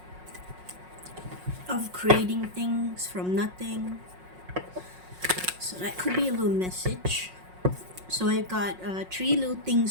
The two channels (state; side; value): late; left; 5.5 ms